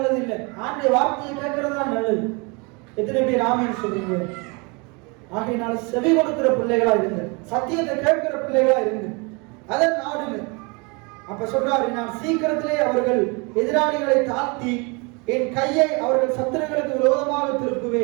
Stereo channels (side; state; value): left; quieter; 30.2 dB